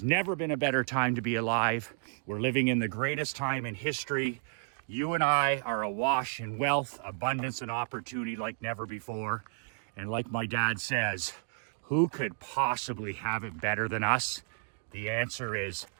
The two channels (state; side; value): silent; left; digital silence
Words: never been a better time to be alive. We're living in the greatest time in history. You and I are awash in wealth, abundance, and opportunity like never before. And like my dad says, who could possibly have it better than us? The answer is